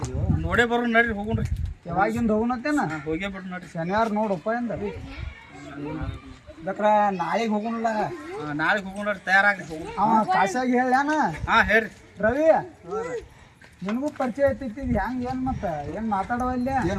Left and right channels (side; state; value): both; identical; correlation 1.00